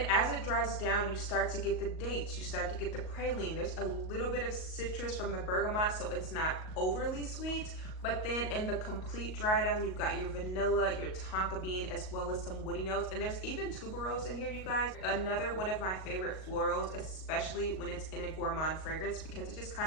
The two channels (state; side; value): late; right; 38 ms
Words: as it dries down, you start to get the dates, you start to get the praline. There's a little bit of citrus from the bergamot, so it's not overly sweet. But then in the complete dry down, you've got your vanilla, your tonka bean, as well as some woody notes. And there's even tuberose in here, you guys. Another one of my favorite florals, especially when it's in a gourmand fragrance, because it just